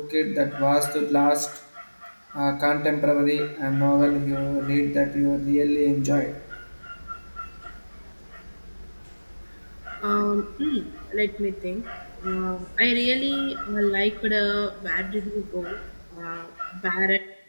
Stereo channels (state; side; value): inverted; both; correlation -1.00